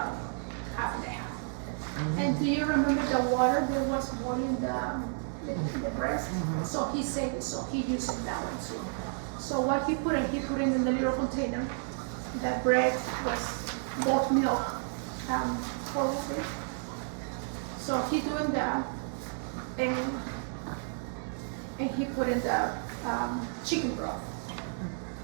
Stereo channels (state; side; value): silent; left; 57 dB below the other